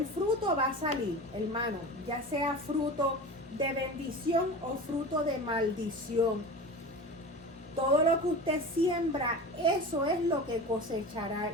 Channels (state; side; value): normal; both; correlation 0.32